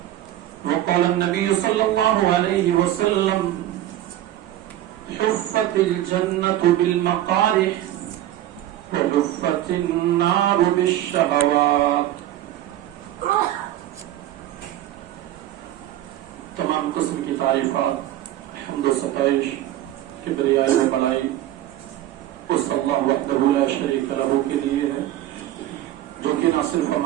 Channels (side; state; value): left; quieter; 13.3 dB